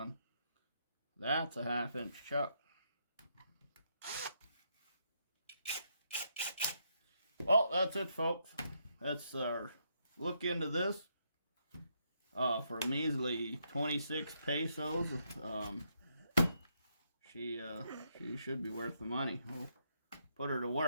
That's a 1/2 inch chuck. Well, that's it, folks. That's our look into this for a measly 26 pesos. She should be worth the money. We'll put her to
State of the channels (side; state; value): both; inverted; correlation -0.77